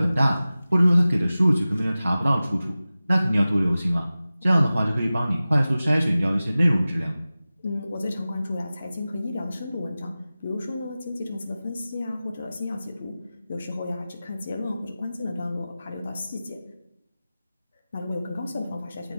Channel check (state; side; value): inverted; both; correlation -0.96